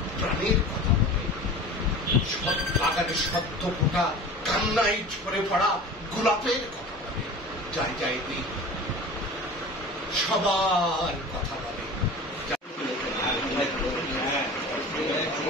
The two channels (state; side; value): normal; both; correlation 0.37